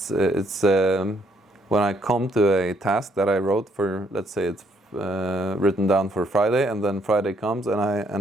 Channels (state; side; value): normal; both; correlation 0.69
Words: it's when I come to a task that I wrote for, let's say it's written down for Friday, and then Friday comes